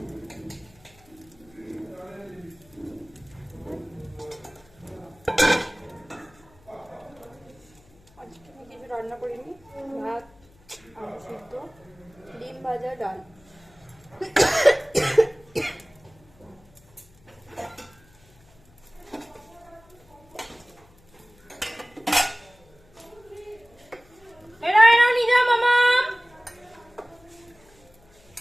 রান্না করিনি। ভাত, আলু সিদ্ধ, ডিম ভাজা, ডাল।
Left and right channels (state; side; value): noise; left; hum, 28 dB below the sound